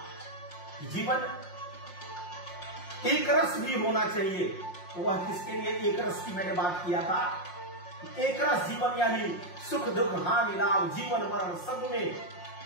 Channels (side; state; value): right; late; 5.6 ms